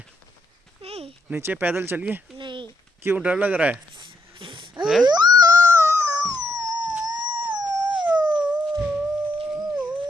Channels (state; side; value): normal; both; correlation 0.78